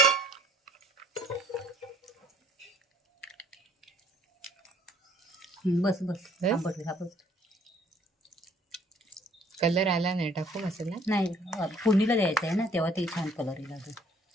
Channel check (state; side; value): normal; both; correlation 0.59